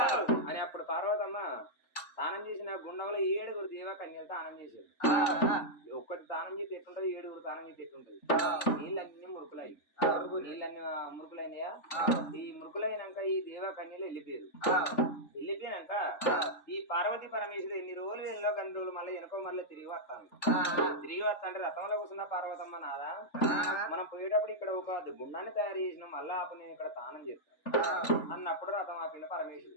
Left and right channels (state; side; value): late; right; 3.5 ms